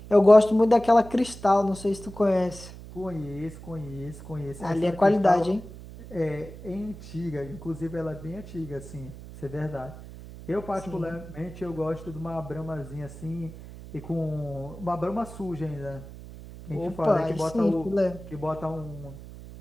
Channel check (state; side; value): noise; right; hum, 15 dB below the sound